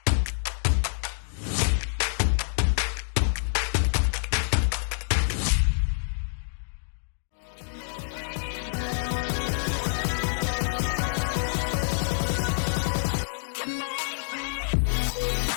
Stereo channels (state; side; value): silent; right; digital silence